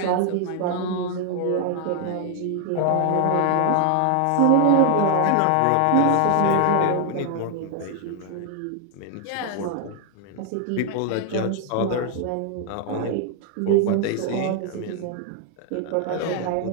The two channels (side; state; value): both; different; correlation 0.00